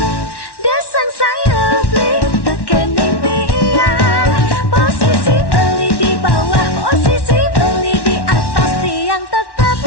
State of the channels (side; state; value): right; late; 1.1 ms